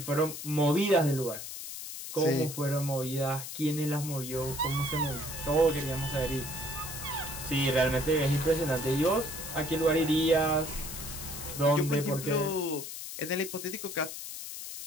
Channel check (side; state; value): left; noise; hiss, 8 dB below the sound